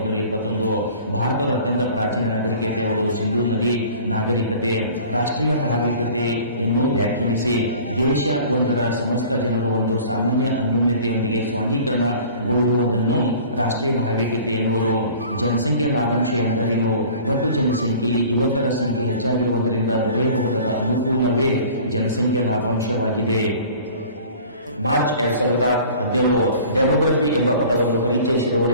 ಭಾರತದ ಅತ್ಯಂತ ಪ್ರಾಚೀನ ನಾಗರಿಕತೆ ಯಾವುದು? ಸಿಂಧೂ ನದಿ ನಾಗರಿಕತೆ. ರಾಷ್ಟ್ರೀಯ ಭಾವೈಕ್ಯತೆಯನ್ನು ವ್ಯಾಖ್ಯಾನಿಸಿ. ದೇಶ ಒಂದರ ಸಮಸ್ತ ಜನರು ಒಂದು ಸಾಮಾನ್ಯ ಅನ್ಯೋನ್ಯತೆಯೊಂದಿಗೆ ಸ್ವಾಂಗೀಕರಣಗೊಳ್ಳುವುದನ್ನು ರಾಷ್ಟ್ರೀಯ ಭಾವೈಕ್ಯತೆ ಎನ್ನುವರು. ಜನಸಂಖ್ಯಾ ಲಾಭಾಂಶ ಎಂದರೇನು? ಒಟ್ಟು ಜನಸಂಖ್ಯೆಯಲ್ಲಿ ಯುವಕರ ಸಂಖ್ಯೆ ಹೆಚ್ಚಾಗಿರುವುದರಿಂದ ದೊರೆಯಬಹುದಾದ ಅನುಕೂಲವೇ ಜನಸಂಖ್ಯಾ ಲಾಭಾಂಶವಾಗಿದೆ. ಮಾರ್ಚ್ 2017 ಡೆಮೋಗ್ರಫಿ ಎಂಬ ಪದವನ್ನು ಪರಿಚಯಿಸಿದವರು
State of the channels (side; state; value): both; inverted; correlation -0.46